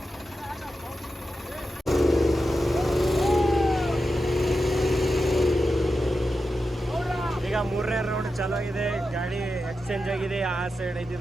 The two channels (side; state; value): both; normal; correlation 0.90